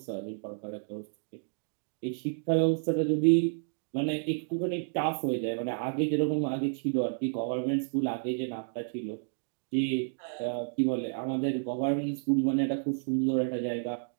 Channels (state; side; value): silent; left; digital silence